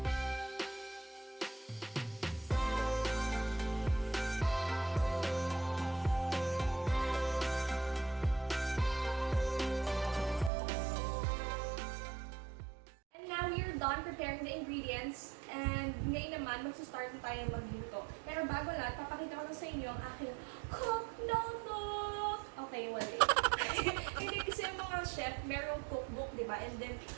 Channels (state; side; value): drops out; left; at 10.5 s